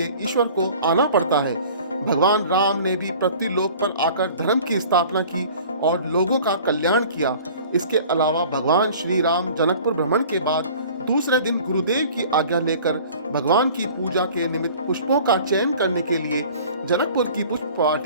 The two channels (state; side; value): inverted; both; correlation -0.46